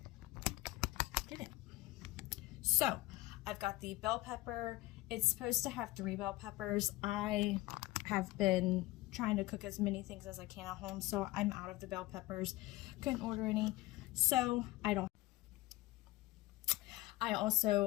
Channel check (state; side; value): quieter; right; 18.6 dB